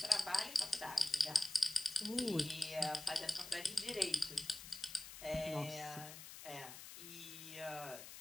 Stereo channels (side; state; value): left; noise; hiss, 12 dB below the sound